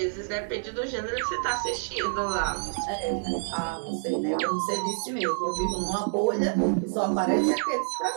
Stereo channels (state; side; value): silent; left; digital silence